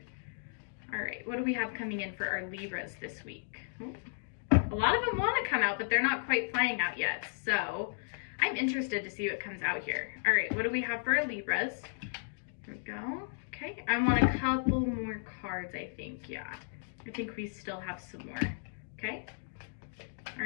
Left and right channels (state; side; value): silent; right; digital silence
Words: All right, what do we have coming in for our Libras this week? Ooh. A lot of them want to come out, but they're not quite flying out yet. So I'm interested to see what comes out here. All right, what do we have for our Libras? There we go. Okay, I want a couple more cards, I think. Yeah, I think we still have some more. Okay. All